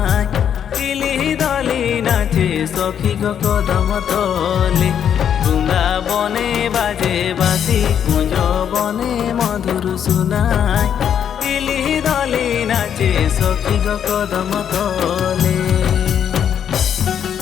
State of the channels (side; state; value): right; quieter; 8.7 dB